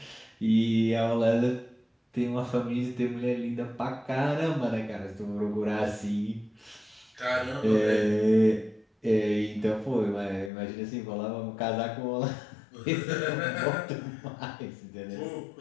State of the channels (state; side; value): drops out; right; at 10.5 s